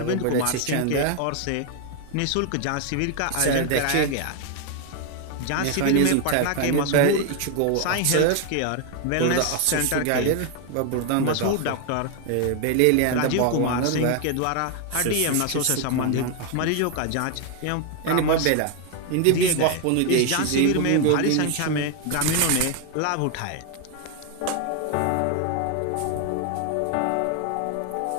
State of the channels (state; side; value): different; both; correlation 0.01